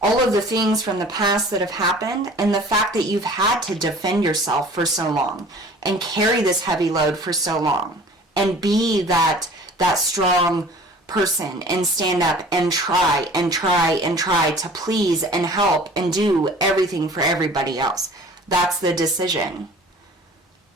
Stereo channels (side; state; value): both; normal; correlation 0.46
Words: all of the things from the past that have happened and the fact that you've had to defend yourself for so long and carry this heavy load for so long and be that strong person and stand up and try to please and help and do everything for everybody else. That's the decision.